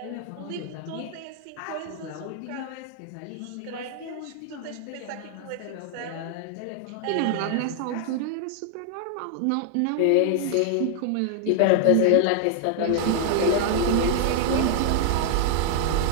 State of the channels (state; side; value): different; both; correlation 0.00